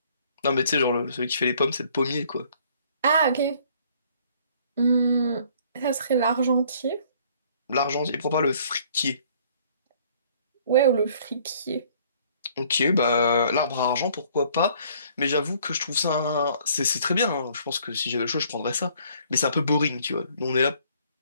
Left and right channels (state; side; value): inverted; both; correlation -0.59